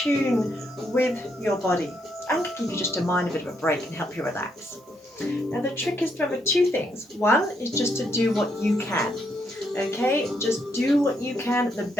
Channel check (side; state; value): both; normal; correlation 0.76